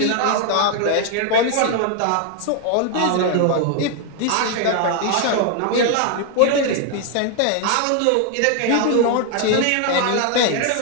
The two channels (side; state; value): both; different; correlation 0.00